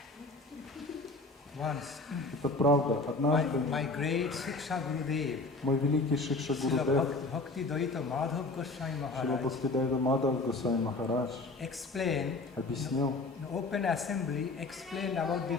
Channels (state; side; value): quieter; right; 3.3 dB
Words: once, Это правда. Однажды my great Shiksha Gurudev, мой великий Шикша Srila Гурудев, Bhakti-yoga Madhav Goswami Шрила Maharaj, Бхактидайта Мадхав Госвами Махарадж explained, объяснил in open assembly, explained about the